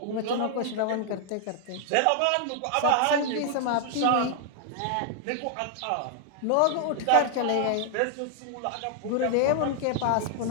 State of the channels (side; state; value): both; different; correlation -0.01